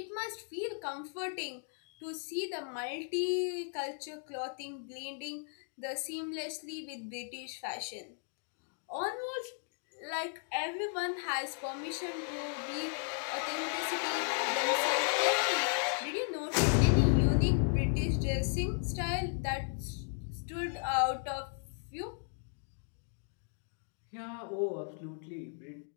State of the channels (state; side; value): silent; right; 54 dB below the other